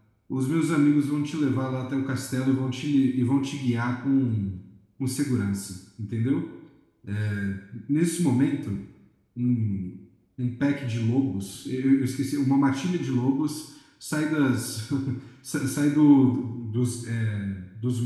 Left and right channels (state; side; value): identical; both; correlation 1.00